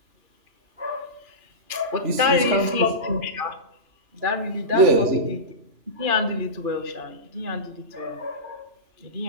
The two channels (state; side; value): late; left; 3.0 ms